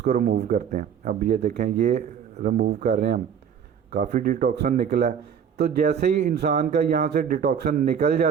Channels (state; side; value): quieter; left; 7.8 dB